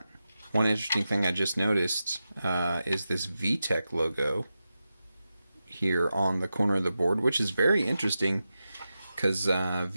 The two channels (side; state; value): both; inverted; correlation -0.91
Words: One interesting thing I just noticed is this Vtec logo here on the corner of the board, which is very interesting because